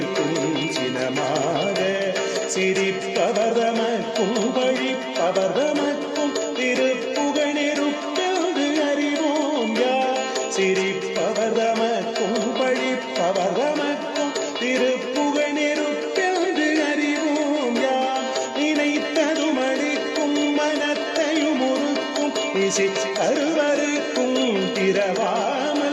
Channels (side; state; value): both; identical; correlation 1.00